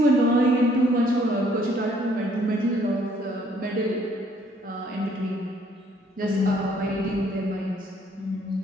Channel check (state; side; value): normal; both; correlation 0.63